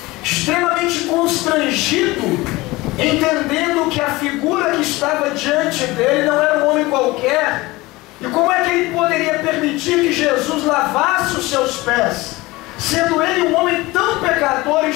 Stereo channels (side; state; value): right; quieter; 20.9 dB